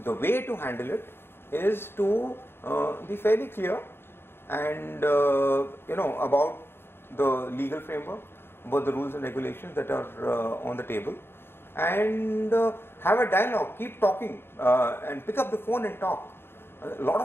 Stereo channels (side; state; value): right; late; 0.11 ms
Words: The way to handle it is to be fairly clear and about the legal framework, about the rules and regulations that are on the table, and have a dialogue, keep talking, and pick up the phone and talk. A lot